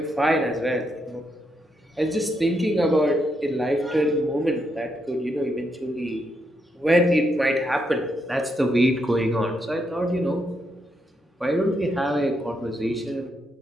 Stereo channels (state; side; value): normal; both; correlation 0.79